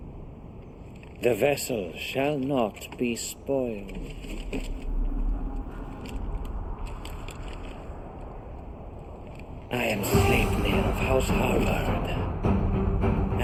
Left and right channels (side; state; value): both; identical; correlation 1.00